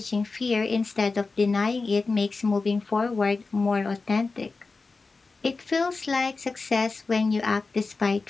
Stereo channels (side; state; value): right; quieter; 4.0 dB